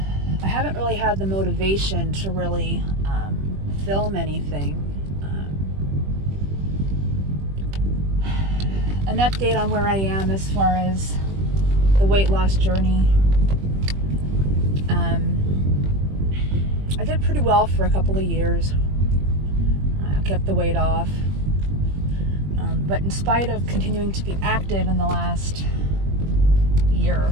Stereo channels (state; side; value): late; left; 21 ms